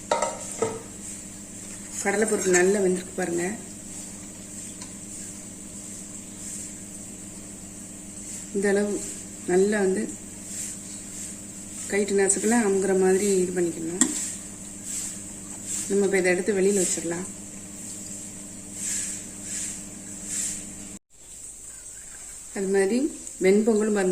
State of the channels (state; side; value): identical; both; correlation 1.00